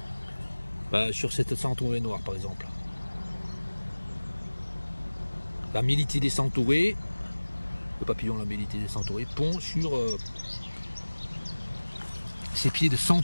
sur cette centaurée noire par exemple. La Mélitidés centaurée, le papillon la Mélitidés centaurée, pond sur ses pieds de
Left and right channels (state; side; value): inverted; both; correlation -1.00